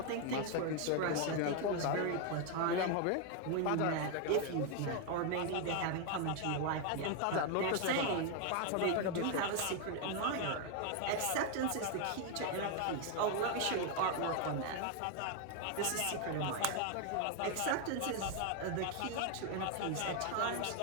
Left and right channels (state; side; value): different; both; correlation 0.01